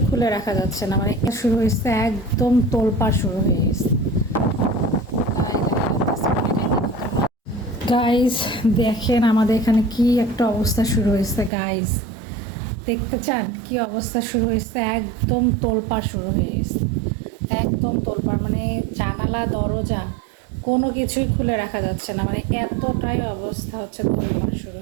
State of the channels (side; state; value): left; drops out; at 11.5 s